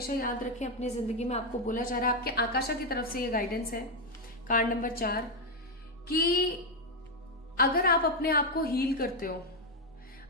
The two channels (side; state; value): both; normal; correlation 0.04